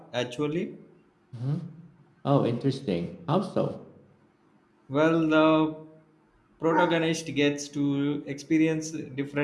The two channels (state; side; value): identical; both; correlation 1.00